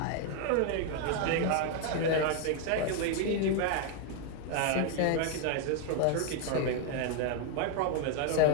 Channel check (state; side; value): different; both; correlation 0.01